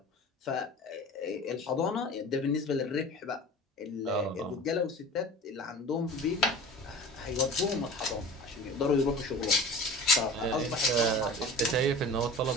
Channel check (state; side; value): normal; both; correlation 0.38